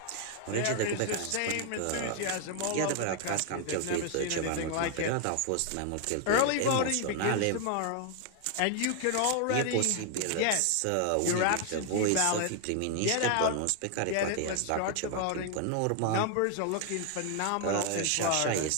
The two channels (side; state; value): both; different; correlation 0.00